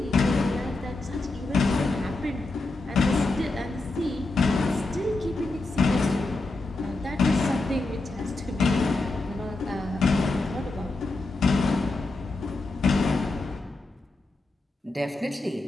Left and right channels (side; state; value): right; quieter; 3.1 dB